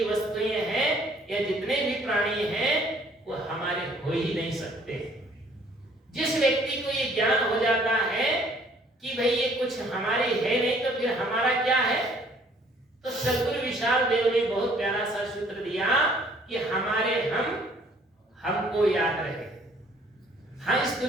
वस्तुएं हैं या जितने भी प्राणी हैं वो हमारे हो ही नहीं सकते। जिस व्यक्ति को ये ज्ञान हो जाता है कि भाई ये कुछ हमारे है नहीं तो फिर हमारा क्या है, तो सद्गुरु विशाल देव ने बहुत प्यारा सा सूत्र दिया कि हमारे हमको याद रहे। हाँ, इस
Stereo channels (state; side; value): normal; both; correlation 0.59